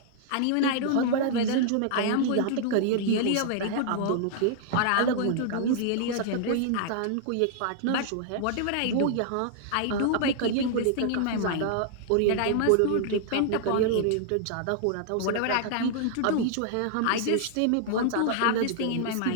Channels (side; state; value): both; different; correlation -0.01